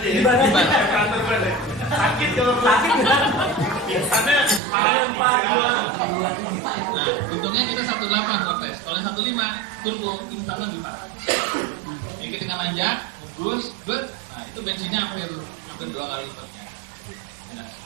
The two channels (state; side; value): drops out; left; at 4.6 s